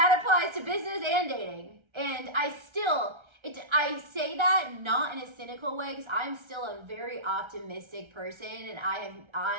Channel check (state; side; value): late; left; 1.3 ms